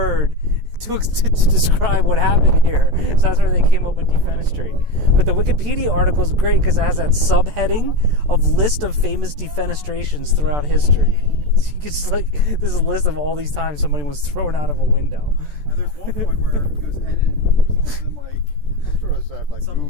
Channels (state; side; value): late; left; 14 ms